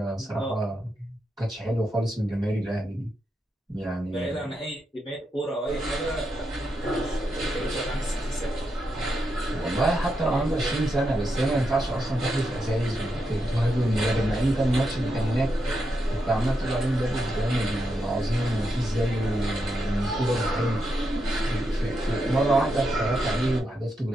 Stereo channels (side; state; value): both; normal; correlation 0.84